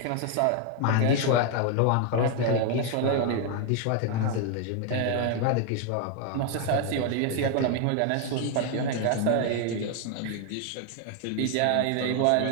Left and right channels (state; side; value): different; both; correlation 0.01